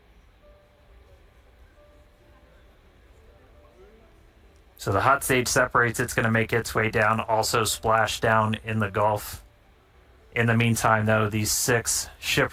So the hot stage separates, it's going to make its way down, also splash down in the Gulf. In the meantime, though, these 6 ship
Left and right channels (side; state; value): both; identical; correlation 1.00